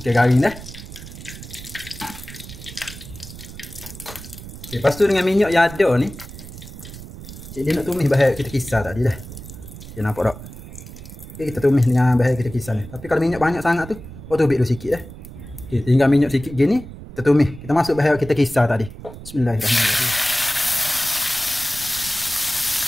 garing dah. Okay, lepas tu dengan minyak yang ada ni, cik dia nak tumis bahan kita kisar tadi dah. Okay, nampak tak? Okay, kita tumis dengan bahan kita kisar ni. Tapi kalau minyak banyak sangat tu, kau tubik dulu sikit dah. Okay, tinggal minyak sikit gini, kita tumis. Kita masuk bahan kita kisar tadi. Bismillahirrahmanirrahim.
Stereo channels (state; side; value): noise; right; rumble, 14 dB below the sound